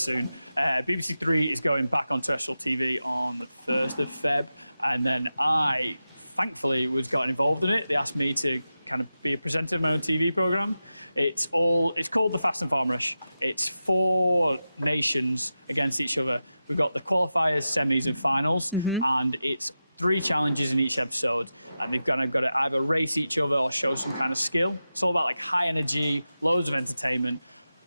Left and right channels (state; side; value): inverted; both; correlation -0.92